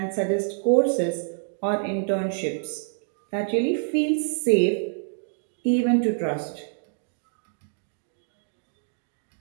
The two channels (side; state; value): left; silent; 60 dB below the other